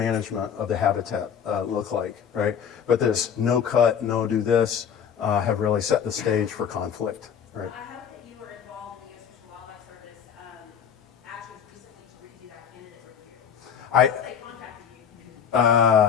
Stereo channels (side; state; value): right; quieter; 7.8 dB